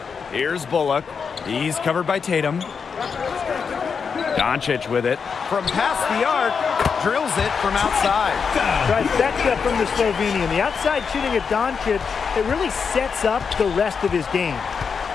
Here's Bullock. He's covered by Tatum. Doncic with it. From past the arc, drills it from outside. Trifecta from the Slovenian. The outside shooting at Doncic, it really sets up the rest of his game.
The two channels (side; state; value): right; quieter; 5.9 dB